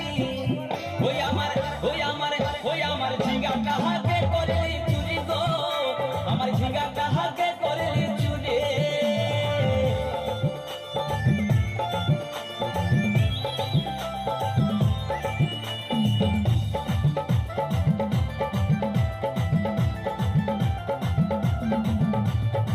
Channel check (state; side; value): identical; both; correlation 1.00